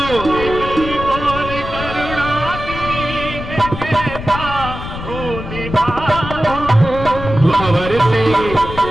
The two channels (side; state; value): left; noise; rumble, 8 dB below the sound